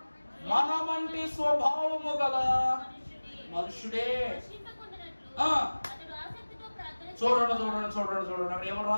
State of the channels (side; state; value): both; inverted; correlation -1.00